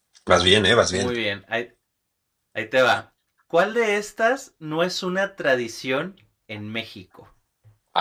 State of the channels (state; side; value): identical; both; correlation 1.00